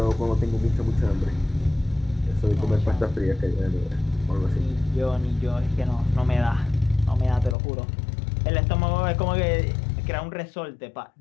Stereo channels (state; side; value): drops out; right; at 7.6 s